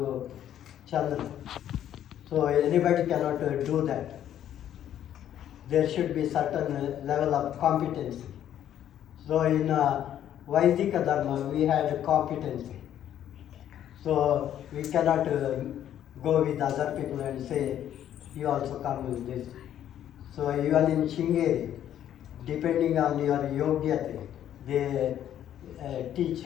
Chandra, so anybody cannot do that. There should be certain level of competency. So in Vaidika Dharma we had competency. So we cannot go with other people and say, you also come with this. So even in Shingeri, depending on your yogyate, they teach.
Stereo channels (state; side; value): quieter; right; 10.8 dB